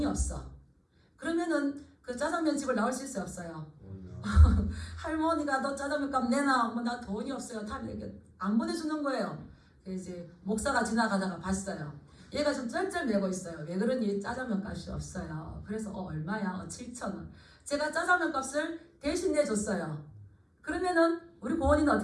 없어. 그러면은 그 짜장면 집을 나올 수 있어요, 없어요? 할머니가 너 짜장면 값 내놔. 나 돈이 없어요. 다 안 보내주는 거예요. 이제 목사가 지나가다가 봤어요. 얘가 좀 쩔쩔매고 있어요. 왜 그러니? 짜장면 값이 없어요. 그래서 얼마야? 7,000원. 제가 짜장면 값을 대신 내줬어요. 그러면은 우리 고은이는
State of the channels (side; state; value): both; identical; correlation 1.00